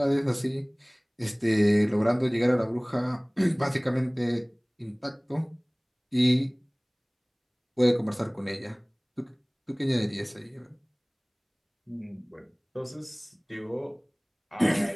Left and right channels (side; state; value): both; identical; correlation 1.00